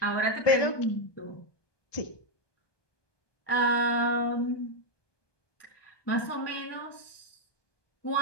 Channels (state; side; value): late; right; 1.2 ms